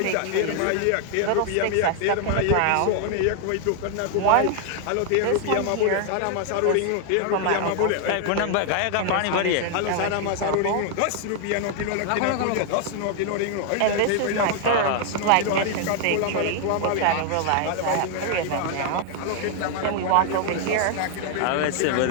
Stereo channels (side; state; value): both; different; correlation 0.00